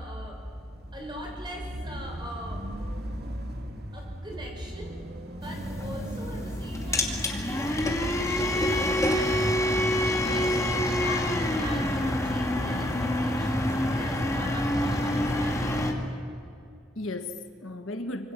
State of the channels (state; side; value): normal; both; correlation 0.69